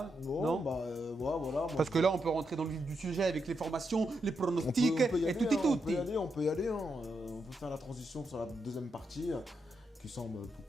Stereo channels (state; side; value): normal; both; correlation 0.83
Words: Non, bah voilà. Parce que là, on peut rentrer dans le vif du sujet avec les formations, les pronostics et tout et tout. On peut y aller. Hein. On peut faire la transition sur la deuxième partie qui semble beaucoup